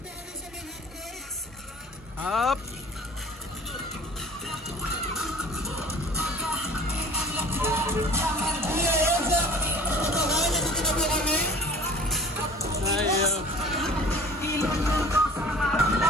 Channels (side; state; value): both; normal; correlation 0.45